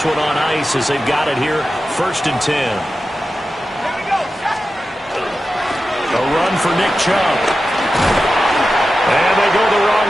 one on ice as they've got it here, 1st and 10. A run for Nick Chubb. And they go the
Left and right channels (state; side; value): normal; both; correlation 0.92